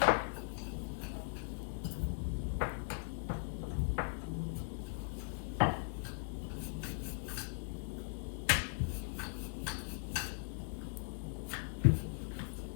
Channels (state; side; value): silent; right; 52 dB below the other